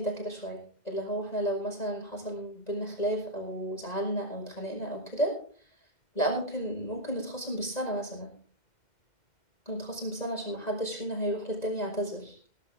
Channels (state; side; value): late; right; 2.0 ms